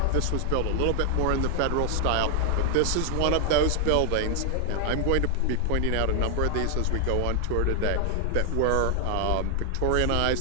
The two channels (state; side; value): different; both; correlation 0.00